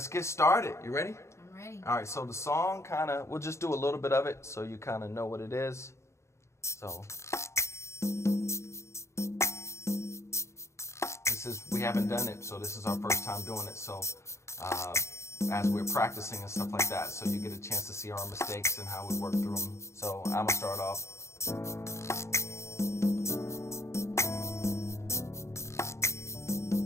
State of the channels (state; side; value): late; right; 0.14 ms